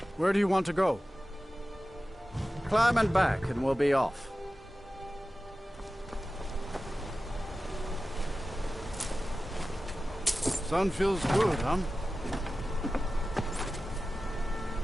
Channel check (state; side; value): normal; both; correlation 0.95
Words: Where do you want to go? Climb and back, and we'll be off. Sun feels good, huh?